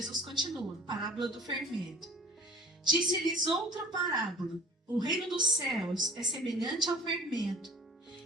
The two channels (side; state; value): both; normal; correlation 0.45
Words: continua, parábola do fermento. Disse-lhes outra parábola: o reino dos céus é semelhante ao fermento,